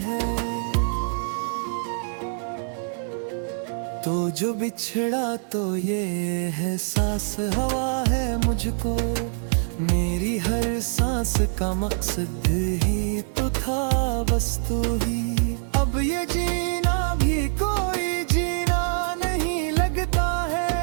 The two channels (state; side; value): silent; left; digital silence